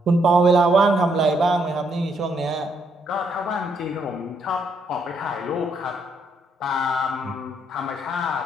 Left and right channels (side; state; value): both; normal; correlation 0.74